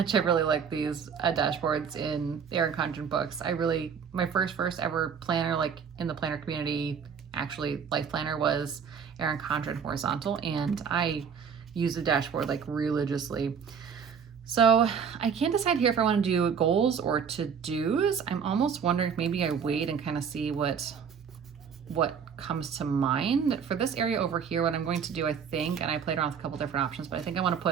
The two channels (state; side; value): quieter; left; 6.9 dB